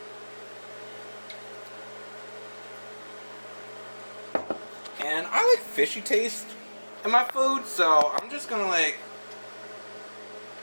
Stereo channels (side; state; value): both; inverted; correlation -1.00